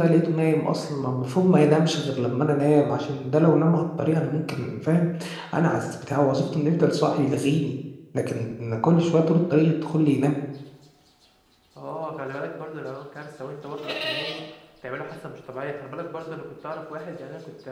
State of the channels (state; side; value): identical; both; correlation 1.00